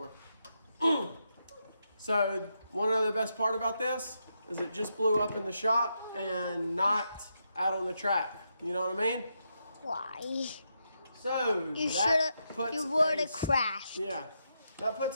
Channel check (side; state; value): both; inverted; correlation -0.83